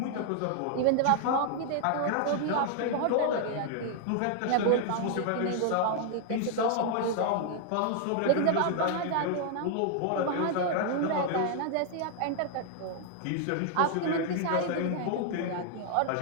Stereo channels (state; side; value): different; both; correlation -0.01